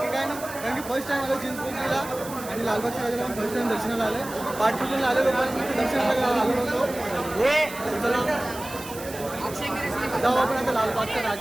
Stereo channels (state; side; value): noise; right; hiss, 14 dB below the sound